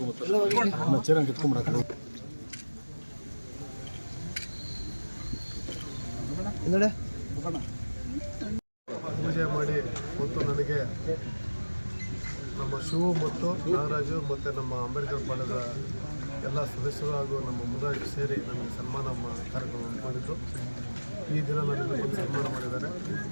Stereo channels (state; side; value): inverted; both; correlation -1.00